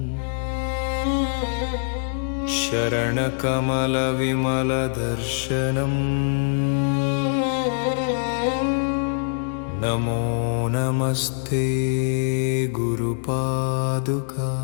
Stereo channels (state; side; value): silent; right; 63 dB below the other